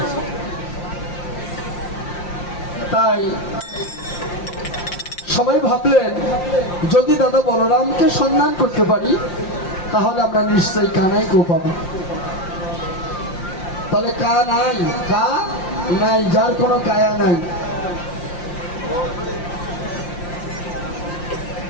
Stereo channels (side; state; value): right; late; 5.7 ms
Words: তাই সবাই ভাবলেন, যদি দাদা বলরামকে সন্ধান করতে পারি তাহলে আমরা নিশ্চয়ই কানাইকেও পাবো। তাহলে কা নাই, কা নাই, যার কোনো কায়া নাই।